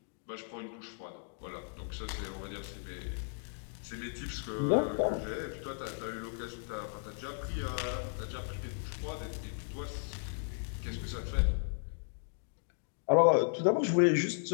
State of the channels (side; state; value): right; silent; digital silence